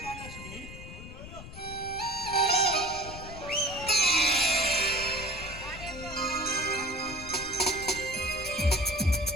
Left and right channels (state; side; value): noise; left; rumble, 13 dB below the sound